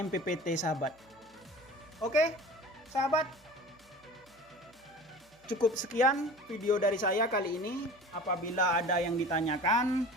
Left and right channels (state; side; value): noise; right; hum, 30 dB below the sound